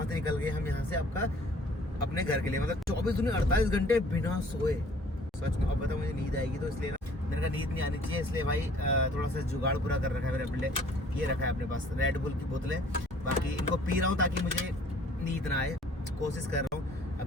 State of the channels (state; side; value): normal; both; correlation 0.55